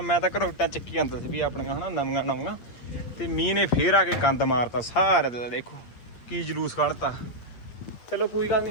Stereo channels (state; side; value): late; right; 8.4 ms